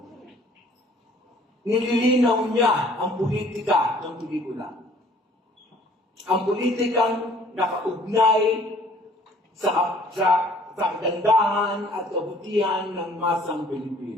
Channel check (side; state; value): both; normal; correlation 0.56